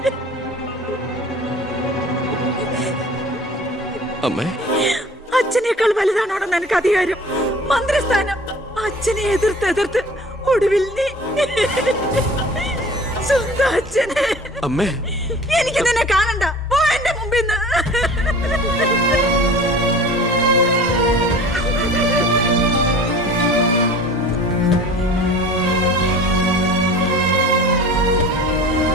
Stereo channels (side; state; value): both; normal; correlation 0.43